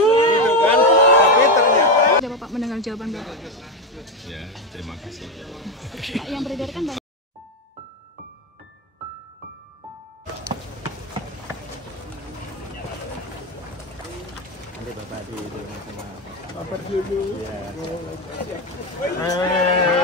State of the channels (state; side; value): normal; both; correlation 0.12